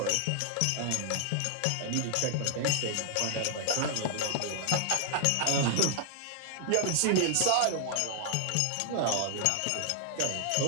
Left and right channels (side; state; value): both; different; correlation 0.00